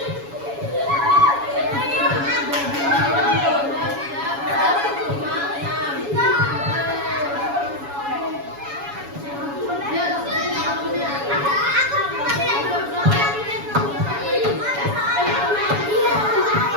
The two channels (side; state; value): left; late; 7.1 ms